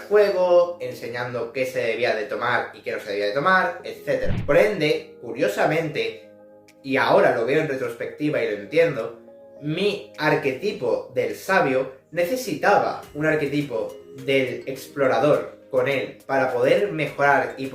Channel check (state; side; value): identical; both; correlation 1.00